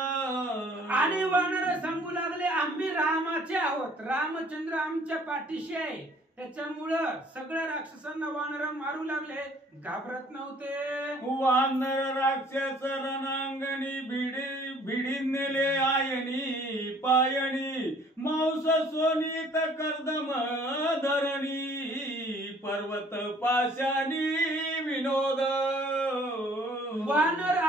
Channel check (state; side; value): normal; both; correlation 0.56